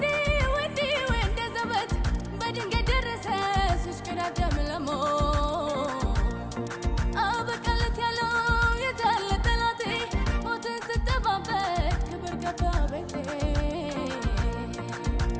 ወንዴ ወንደ ዘበት በድንገት ደረሰ ሲሽከዳደም ለሞት አበቃለት ያለው የታለ ጠላቴ ሞትን ስጠባበቅ ክብር ገባ ቤቴ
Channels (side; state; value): both; identical; correlation 1.00